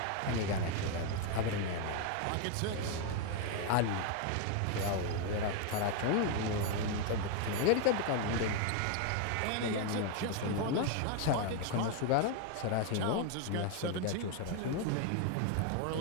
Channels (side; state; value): both; different; correlation 0.01